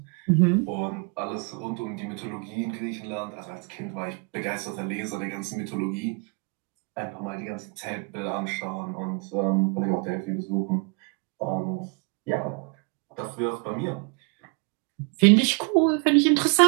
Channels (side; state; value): left; quieter; 34.6 dB